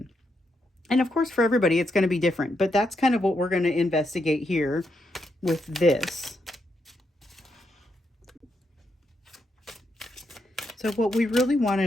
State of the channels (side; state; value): both; normal; correlation 0.81